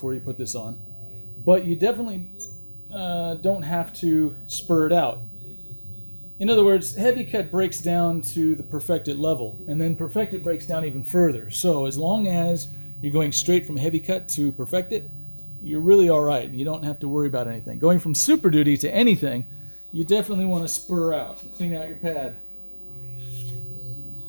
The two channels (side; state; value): both; inverted; correlation -1.00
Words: you put this on. But you definitely don't have to spur it out. In other words, heavy cut breaks down to the Perfected level, and then Perfected breaks down even further. So as long as you're going straight from heavy cut to Perfected, you're really all right. You don't have to worry about anything. Going from Super Duty to anything, you definitely want to spur out and clean out your pad.